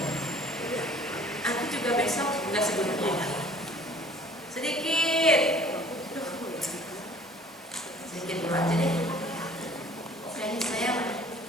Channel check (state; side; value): normal; both; correlation 0.51